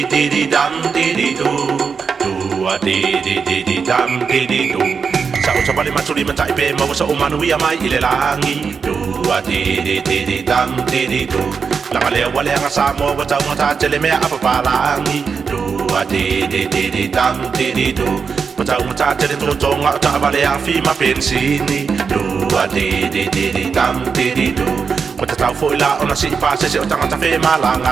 dee dee dum dee dee do. Do a dee dee dee dee dum dee dee do. Sa o sabali matuli matai pe mau sa umanu ia mai ile langi. Do a dee dee dee dee dum dee dee do. Langa lea wale anga sa mo wa tau ngata tele mea apa palangi. Do a dee dee dee dee dum dee dee do. Patau ngata tele tolo tonga ta vale a fi ma pensini. Do a dee dee dee dee dum dee dee do. Wata tau fo ila ona si pa se se o tangata fe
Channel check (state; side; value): quieter; left; 5.7 dB